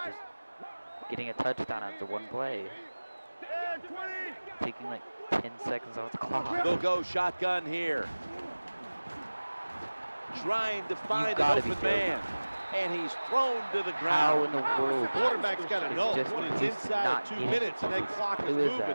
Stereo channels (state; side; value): inverted; both; correlation -1.00